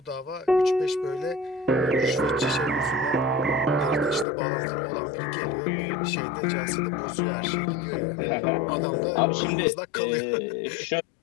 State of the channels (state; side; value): drops out; right; at 4.2 s